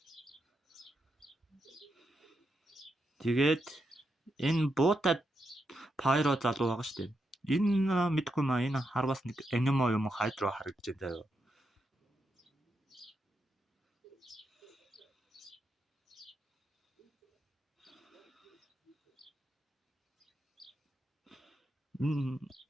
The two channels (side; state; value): both; normal; correlation 0.84